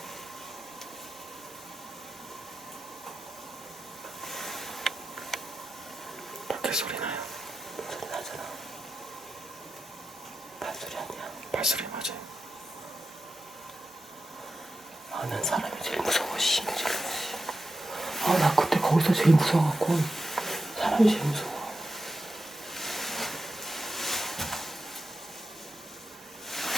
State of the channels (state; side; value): normal; both; correlation 0.91